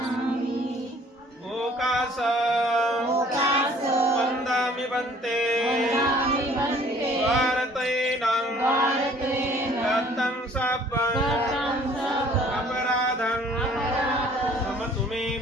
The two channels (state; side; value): normal; both; correlation 0.55